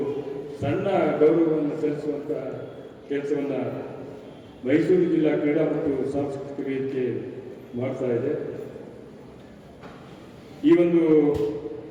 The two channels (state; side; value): identical; both; correlation 1.00